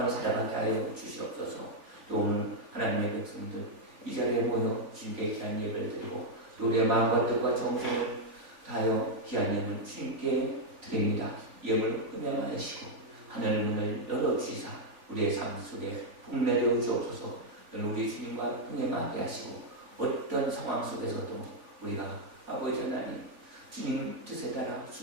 살아가게 하여 주시옵소서. 또 오늘 하나님의 백성들 이 자리에 모여 주님께 귀한 예배를 드리고 또 우리의 마음과 뜻과 정성을 다하여 귀한 예물 주님께 드립니다. 예물 음양하시고 하늘 문을 열어주시사 우리의 삶 속에 복 내려 주옵소서. 우리 주님과 동행하게 하시고 어떤 상황 속에서도 우리가 아버지 하나님 주님 뜻에 따라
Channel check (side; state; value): left; late; 3.5 ms